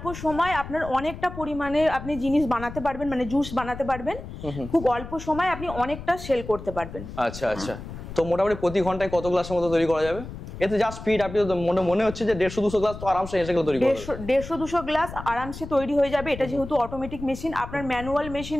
সময় আপনার অনেকটা পরিমাণে আপনি জিনিস বানাতে পারবেন, মানে জুস বানাতে পারবেন। খুব অল্প সময় আপনি অনেকটা সেল করতে পারবেন। আচ্ছা আচ্ছা, তো মোটামুটি প্রতি ঘন্টায় কত গ্লাসের মতো তৈরি করা যাবে? এতে যা স্পিড, আপনি তো মনে হচ্ছে যে 150-200 গ্লাস তো আরামসে এসে তৈরি করবে। 150-200 গ্লাস আরামসে তৈরি হয়ে যাবে। এটা যেহেতু অটোমেটিক মেশিন, আপনার ম্যানুয়াল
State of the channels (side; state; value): left; noise; rumble, 11 dB below the sound